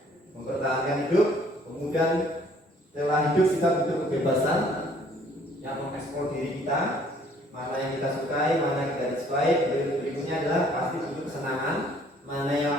mempertahankan hidup. Kemudian setelah hidup kita butuh kebebasan yang mengeksplor diri kita, mana yang kita sukai, mana yang kita disukai. Berikutnya adalah pasti butuh kesenangan, mana yang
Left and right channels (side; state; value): both; normal; correlation 0.59